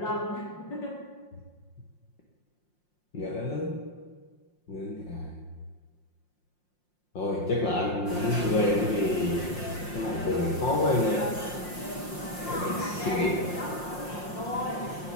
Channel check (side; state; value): right; late; 5.6 ms